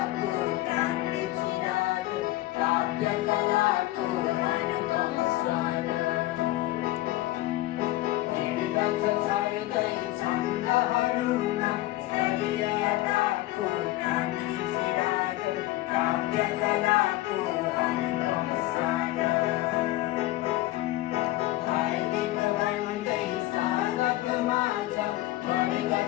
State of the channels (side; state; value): right; quieter; 17.1 dB